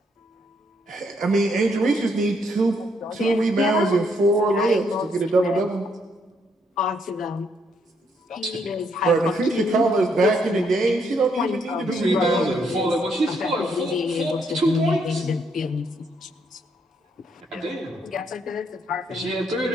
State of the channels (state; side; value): normal; both; correlation 0.73